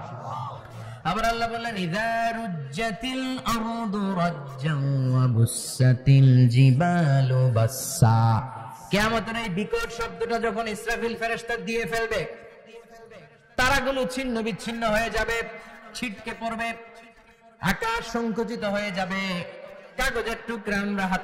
আবার আল্লাহ বললেন ইযা রুজ্জাতিল আরদু রাজ্জান ওয়া বুসাতিল জিবালু বাসসা। কিয়ামতের এই বিকট শব্দটা যখন ইসরাফিল ফেরেশতা দিয়ে ফেলবে, তারাগুলো ছিন্ন বিচ্ছিন্ন হয়ে যাবে, ছিটকে পড়বে, আকাশ সংকুচিত হয়ে যাবে। কাগজের টুকরা আমরা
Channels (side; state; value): both; identical; correlation 1.00